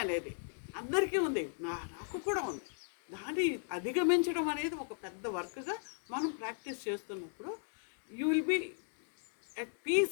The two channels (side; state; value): right; silent; digital silence